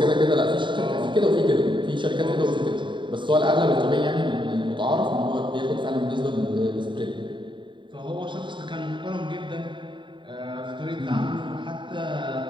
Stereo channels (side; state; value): left; late; 0.23 ms